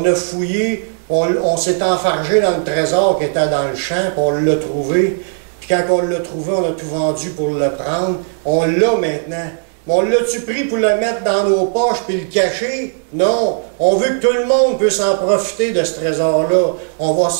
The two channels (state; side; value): silent; left; digital silence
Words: a fouillé, on s'est enfargé dans le trésor qui était dans le champ, puis on l'a trouvé. Puis quand on l'a trouvé, on a tout vendu pour le prendre. On l'a maintenant. On l'a-tu pris pour le mettre dans nos poches puis le cacher? Non. On veut que tout le monde puisse en profiter de ce trésor-là. On va